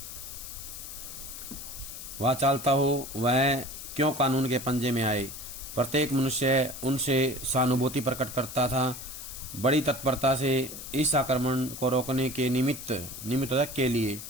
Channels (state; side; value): noise; left; hiss, 10 dB below the sound